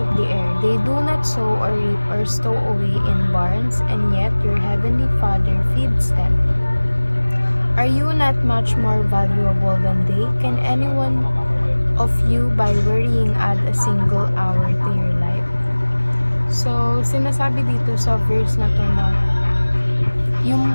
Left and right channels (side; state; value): both; inverted; correlation -1.00